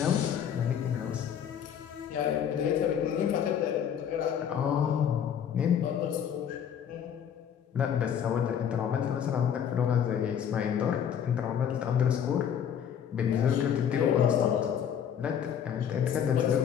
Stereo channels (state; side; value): quieter; right; 8.6 dB